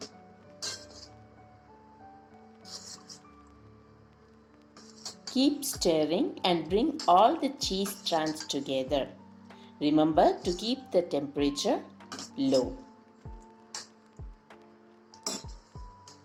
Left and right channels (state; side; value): identical; both; correlation 1.00